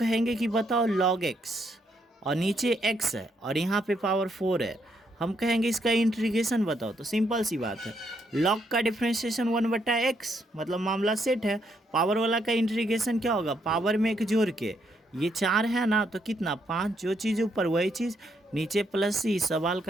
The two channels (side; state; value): both; normal; correlation 0.75